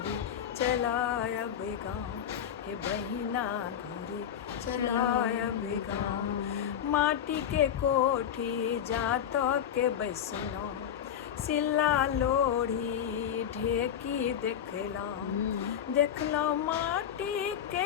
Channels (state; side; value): quieter; right; 9.4 dB